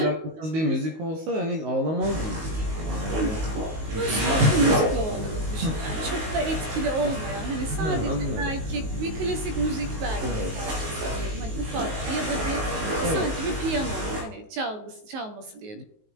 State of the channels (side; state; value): left; late; 19 ms